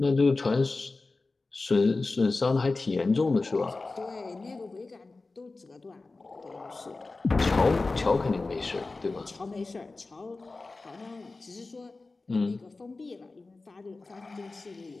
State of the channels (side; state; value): right; quieter; 3.5 dB